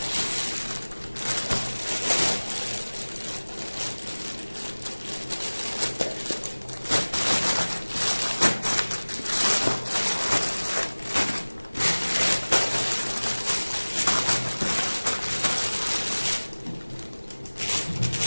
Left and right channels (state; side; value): inverted; both; correlation -1.00